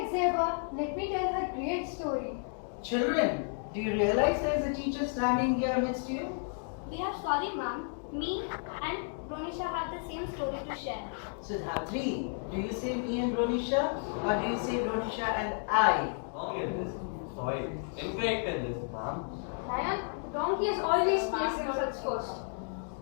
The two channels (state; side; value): silent; right; 56 dB below the other